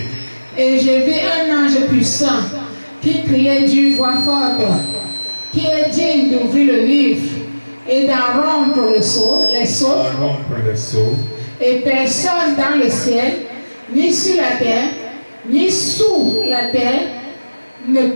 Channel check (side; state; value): both; inverted; correlation -1.00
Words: Et je vis un ange puissant qui criait d'une voix forte, qui est digne d'ouvrir le livre et d'en rompre les sceaux. Rompre les sceaux. Et personne dans le ciel, ni sur la terre, ni sous la terre, ne